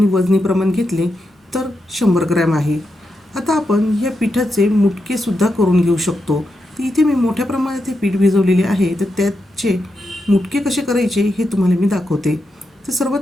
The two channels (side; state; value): both; normal; correlation 0.86